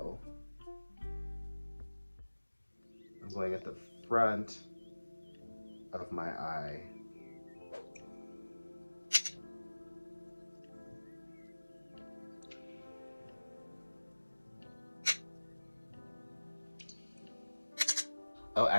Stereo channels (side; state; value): both; inverted; correlation -1.00